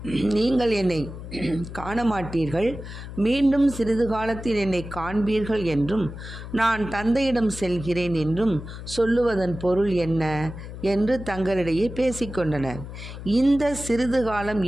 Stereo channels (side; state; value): left; noise; hum, 11 dB below the sound